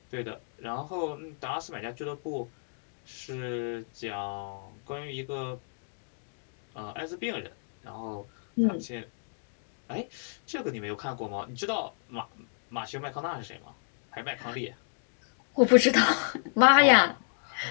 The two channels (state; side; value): silent; right; digital silence